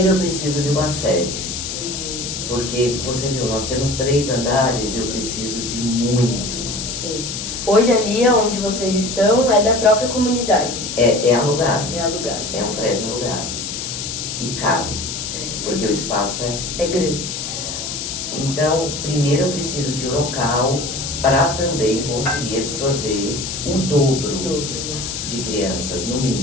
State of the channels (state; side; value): noise; left; hiss, 5 dB below the sound